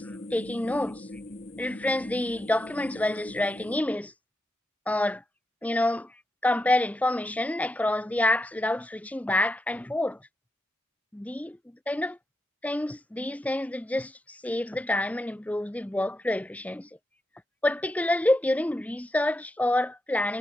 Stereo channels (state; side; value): normal; both; correlation 0.85